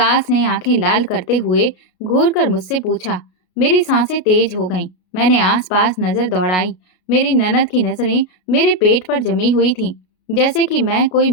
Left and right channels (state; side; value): late; right; 33 ms